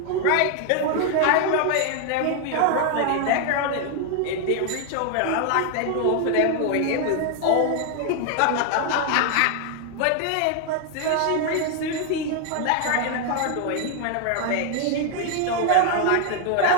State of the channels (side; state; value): both; different; correlation 0.00